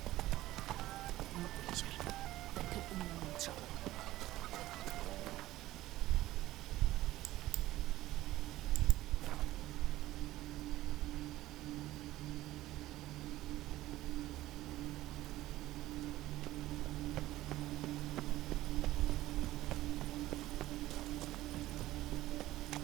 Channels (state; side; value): quieter; left; 15.9 dB